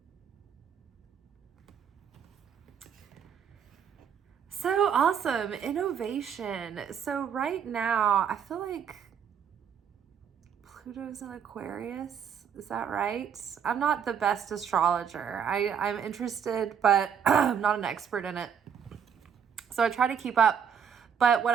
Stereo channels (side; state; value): left; quieter; 7.7 dB